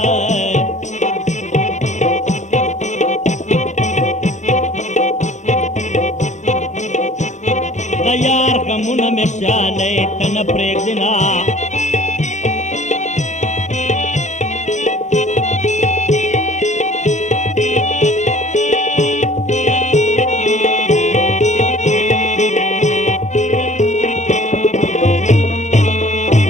यार का मुन में शाले तन प्रेगना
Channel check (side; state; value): right; late; 0.34 ms